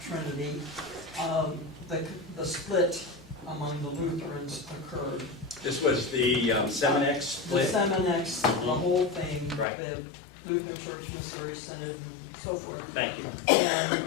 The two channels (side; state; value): right; drops out; at 9.7 s